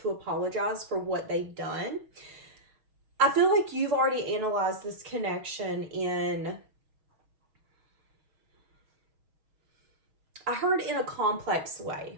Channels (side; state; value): left; late; 6.3 ms